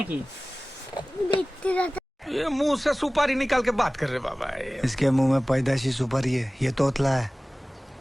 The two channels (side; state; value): both; normal; correlation 0.98